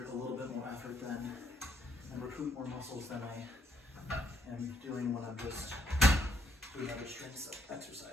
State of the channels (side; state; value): both; normal; correlation 0.72